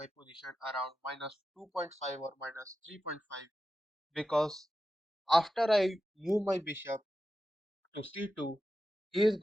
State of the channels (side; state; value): both; normal; correlation 0.91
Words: position around minus 2.5 or minus 3.5 because after I move my bishop to c2, he is